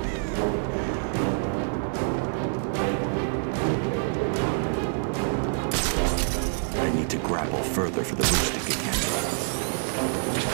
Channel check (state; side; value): silent; left; digital silence